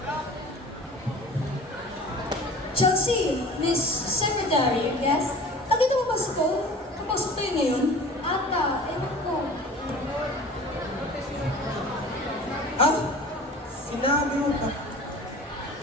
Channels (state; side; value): normal; both; correlation 0.42